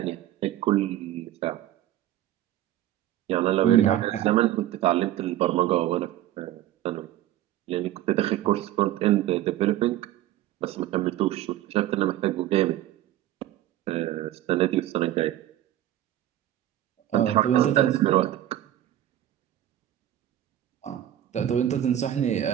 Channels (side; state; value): left; quieter; 13.0 dB